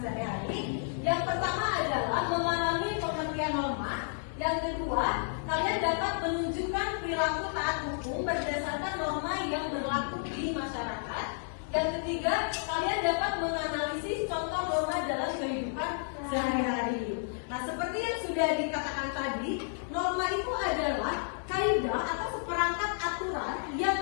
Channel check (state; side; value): silent; right; 57 dB below the other